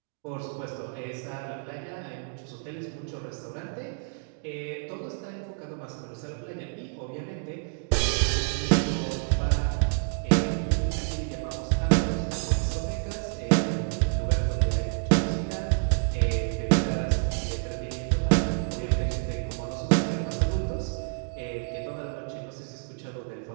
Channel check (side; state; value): left; silent; 59 dB below the other